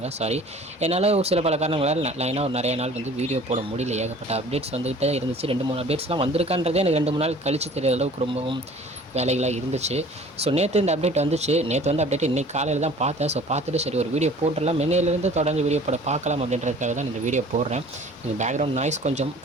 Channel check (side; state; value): both; normal; correlation 0.48